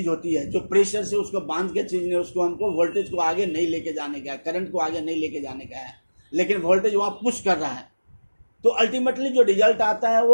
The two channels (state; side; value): inverted; both; correlation -1.00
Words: होती है, जो प्रेशर से उसको बांध के चीज़ ने उसको हमको वोल्टेज को आगे नहीं लेके जाने का है, करंट को आगे नहीं लेके जाने का है, लेकिन वोल्टेज वहाँ पुश कर रहा है। तो अल्टीमेटली जो रिजल्ट आता है